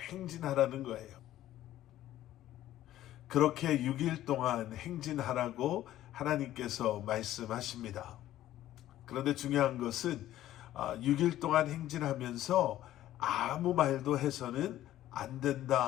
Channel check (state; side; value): quieter; right; 13.6 dB